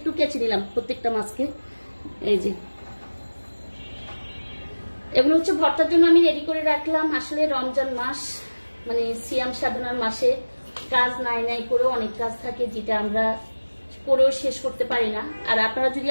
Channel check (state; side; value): inverted; both; correlation -1.00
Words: কেচে নিলাম, প্রত্যেকটা মাছকে। এই যে এগুলো হচ্ছে ভর্তার জন্য আমি রেডি করে রাখলাম। আসলে রমজান মাস মানে সিয়াম সাধনার মাসে কাজ নাই করেও অনেক কাজ থাকে, যেটা আমরা করেও শেষ করতে পারি না। আর আপনারা যদি